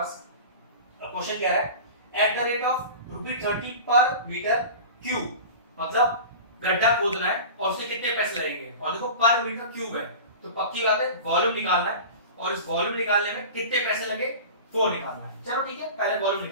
अब क्वेश्चन कह रहा है एट द रेट ऑफ ₹30 पर मीटर क्यूब, मतलब गड्ढा खोदना है और उसके कितने पैसे लगेंगे, और देखो पर मीटर क्यूब है तो पक्की बात है वॉल्यूम निकालना है, और इस वॉल्यूम निकालने में कितने पैसे लगे वो निकालना है। चलो ठीक है, पहले वॉल्यूम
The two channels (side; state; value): both; inverted; correlation -0.35